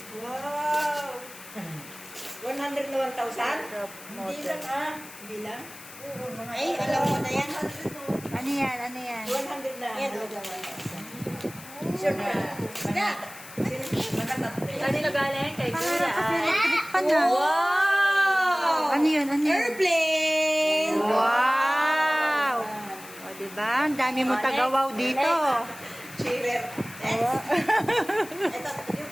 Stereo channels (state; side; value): noise; left; hiss, 17 dB below the sound